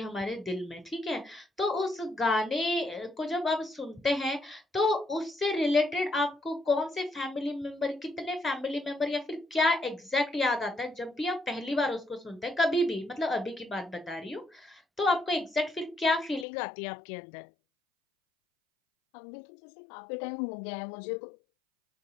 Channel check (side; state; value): right; drops out; at 16.4 s